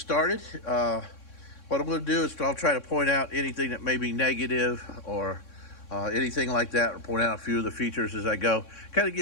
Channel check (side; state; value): right; late; 3.6 ms